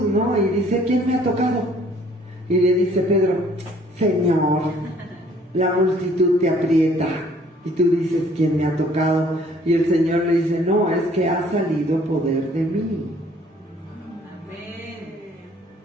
¿no? Y dice: ¿quién me ha tocado? Y le dice Pedro: Señor, la multitud te aprieta. Y tú dices: ¿quién me ha tocado? Y el Señor le dice: no, es que ha salido poder de mí.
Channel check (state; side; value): normal; both; correlation 0.58